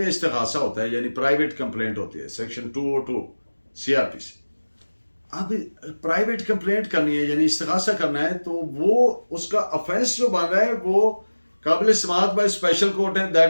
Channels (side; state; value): both; inverted; correlation -1.00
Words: इस्तिगासा होता है, यानी प्राइवेट कंप्लेंट होती है, सेक्शन 202 CRPC। अब प्राइवेट कंप्लेंट करनी है यानी इस्तिगासा करना है, तो वो उसका ऑफेंस जो बन रहा है वो काबिल समाअत बाय स्पेशल कोर्ट है,